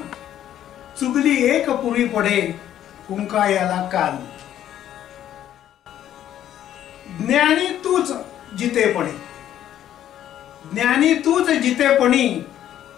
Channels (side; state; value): right; quieter; 11.3 dB